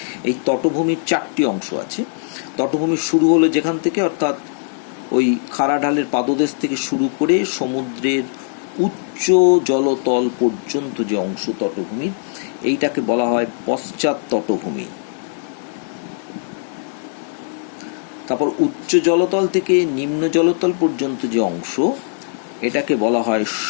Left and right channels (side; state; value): right; silent; 66 dB below the other